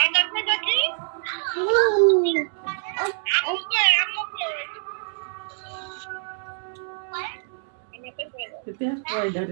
কই দেখি আম্মু কই আম্মু কই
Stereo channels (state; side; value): silent; left; 62 dB below the other